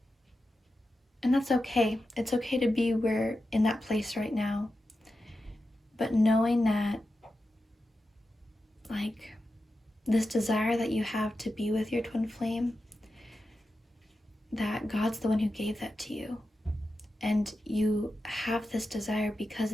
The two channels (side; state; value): both; normal; correlation 0.91